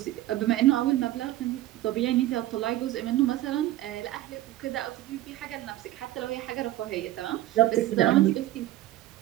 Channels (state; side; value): quieter; left; 14.9 dB